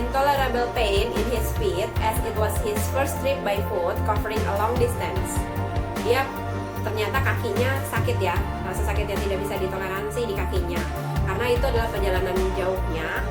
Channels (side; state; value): both; identical; correlation 1.00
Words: pain in his feet as it was his first trip by foot covering a long distance. Dia ternyata kakinya sakit ya, rasa sakit yang tidak bisa ditoleransi di kakinya. Karena itu adalah perjalanan jauhnya,